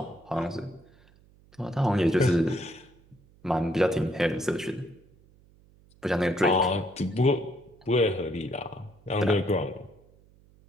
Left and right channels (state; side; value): noise; right; hum, 29 dB below the sound